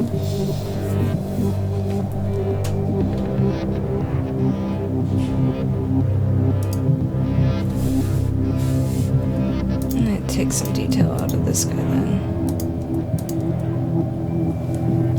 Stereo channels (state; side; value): identical; both; correlation 1.00